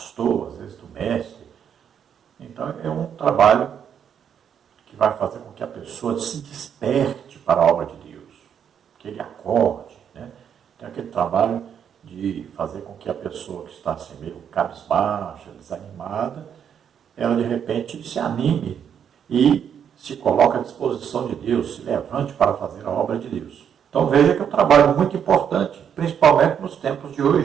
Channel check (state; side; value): quieter; left; 8.3 dB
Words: às vezes do mestre. Então, é um trabalho que vai fazer com que a pessoa se desperte para a obra de Deus, que ele acorde. Tem aquele trabalho de fazer com que a pessoa que está assim meio cabisbaixa, desanimada, ela de repente se anime e se coloque à disposição de Deus, se levante para fazer a obra de Deus. Então veja que é um trabalho muito importante, principalmente nos tempos de